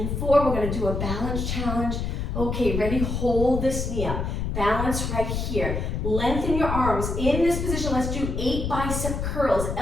4. We're going to do a balance challenge. Okay, ready? Hold this knee up. Balance right here. Lengthen your arms. In this position, let's do 8 bicep curls.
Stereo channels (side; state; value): left; noise; rumble, 2 dB below the sound